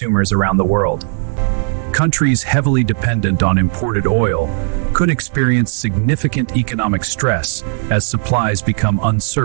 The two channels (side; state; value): left; silent; digital silence